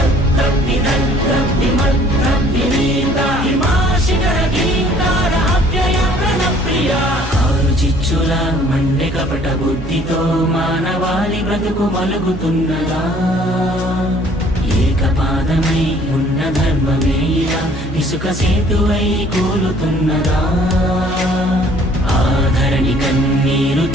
విదగ్ధ విమర్ధ వినీత హిమాశిఖర గీంకార అవ్యయ ప్రణప్రియ ఆరు చిచ్చుల మండె కపట బుద్ధితో మానవాళి బ్రతుకు మలుగుతున్నదా ఏకపాదమై ఉన్న ధర్మమే ఇలా ఇసుక సేతువై కూలుతున్నదా ఆధరణి కన్నీరు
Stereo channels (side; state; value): both; normal; correlation 0.56